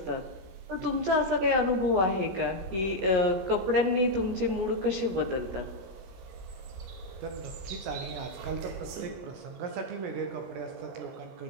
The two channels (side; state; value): left; late; 17 ms